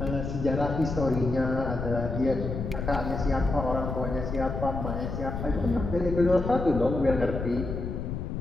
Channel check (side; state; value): left; noise; rumble, 4 dB below the sound